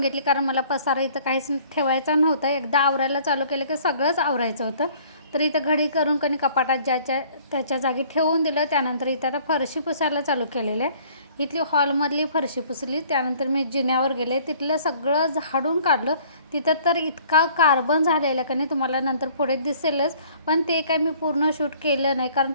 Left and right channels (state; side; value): inverted; both; correlation -0.55